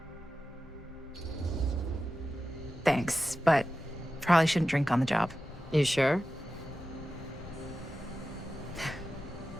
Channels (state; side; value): normal; both; correlation 0.93